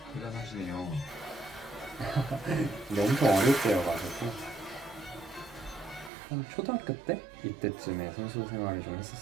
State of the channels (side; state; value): left; drops out; at 6.1 s